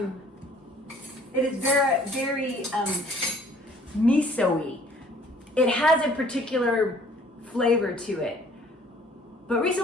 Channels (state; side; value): normal; both; correlation 0.56